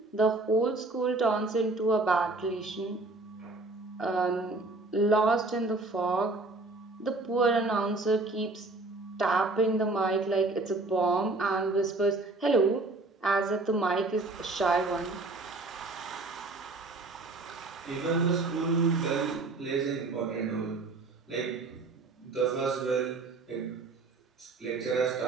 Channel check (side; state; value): left; quieter; 3.3 dB